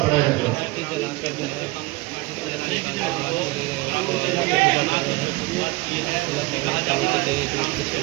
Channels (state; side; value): quieter; left; 21.9 dB